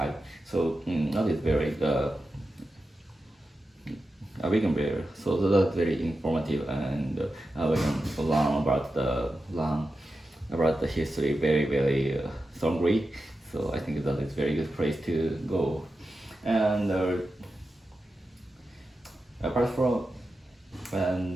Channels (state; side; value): normal; both; correlation 0.91